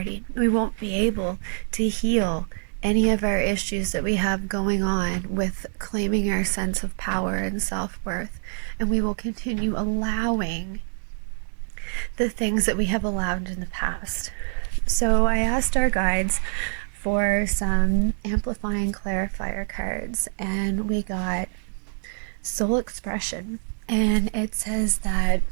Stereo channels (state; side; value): silent; left; digital silence